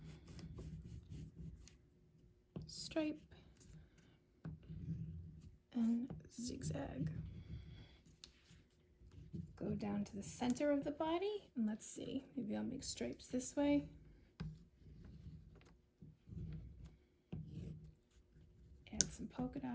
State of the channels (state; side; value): identical; both; correlation 1.00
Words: stripe, and zigzag. Go down to the center of the body, and let's see, maybe I'll make stripes this way. Add some polka